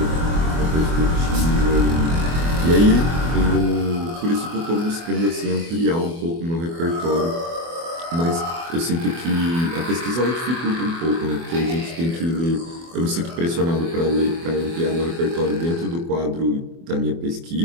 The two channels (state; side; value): late; left; 24 ms